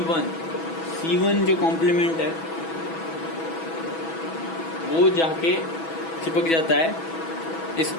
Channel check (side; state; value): right; late; 6.1 ms